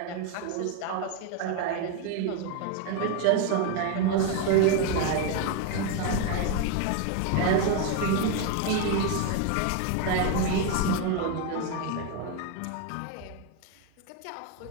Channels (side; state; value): both; different; correlation 0.01